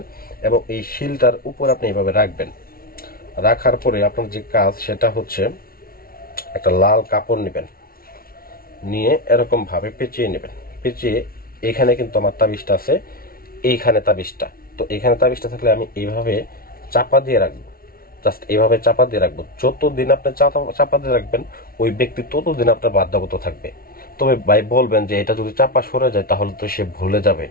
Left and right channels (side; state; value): right; late; 0.43 ms